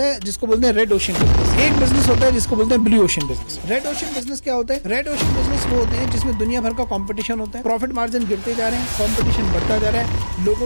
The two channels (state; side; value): inverted; both; correlation -1.00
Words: है जिसको बोलते हैं रेड ओशन बिजनेस, एक बिजनेस होता है जिसको बोलते हैं blue ocean business. Red ocean business क्या होता है? रेड ओशन बिजनेस वो होते हैं जिसमें दुनिया भर का कंपटीशन होता है, प्रॉफिट मार्जिन गिरते जा रहे हैं, कंपटीशन बढ़ता जा रहा है,